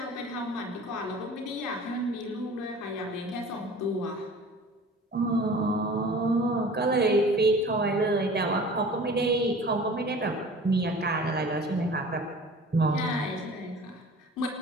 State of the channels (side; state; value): both; normal; correlation 0.43